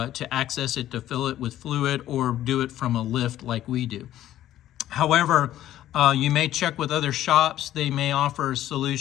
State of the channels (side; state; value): right; quieter; 12.9 dB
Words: access it, to fill it with fluid, or do it from a lift like we do. However, you may check with other shops. They may offer